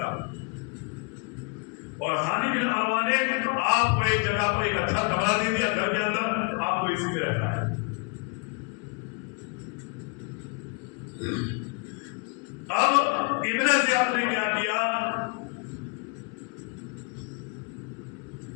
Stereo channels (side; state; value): right; quieter; 33.1 dB